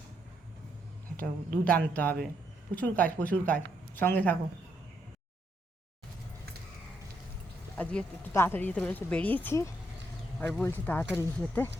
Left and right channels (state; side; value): normal; both; correlation 0.76